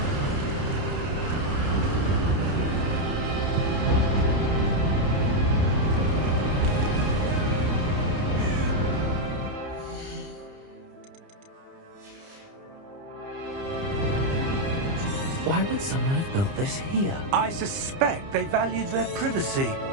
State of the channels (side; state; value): left; late; 30 ms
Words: Why would someone have built this here? I suspect they valued their privacy.